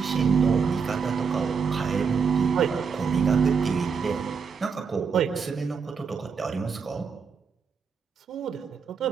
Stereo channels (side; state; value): left; quieter; 5.9 dB